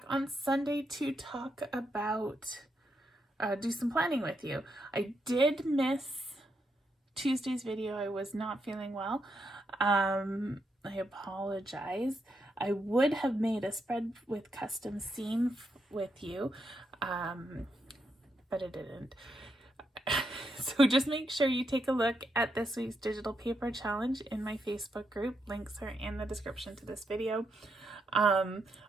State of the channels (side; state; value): both; normal; correlation 0.81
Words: on Sunday to talk about, do some planning with you. I did miss Tuesday's video. I was not feeling well. I apologize. I would have made a spread with custom seam with you, but it didn't. So just make sure you take a look at this week's digital paper challenge in my Facebook group. Links are in the description to this video.